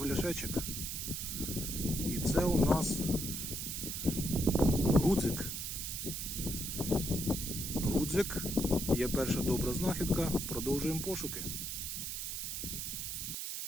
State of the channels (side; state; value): right; noise; hiss, 4 dB below the sound